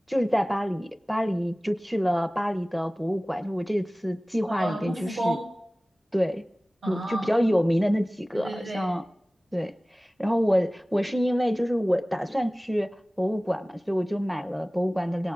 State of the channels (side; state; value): both; normal; correlation 0.98